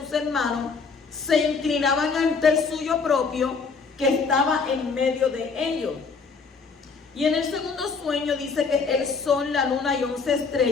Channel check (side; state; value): right; quieter; 4.9 dB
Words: hermanos se inclinaban ante el suyo propio, que estaba en medio de ellos. Y en el segundo sueño dice que el sol, la luna y 11